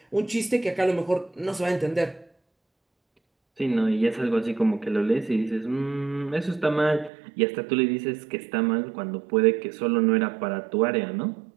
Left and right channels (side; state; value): left; drops out; at 7.1 s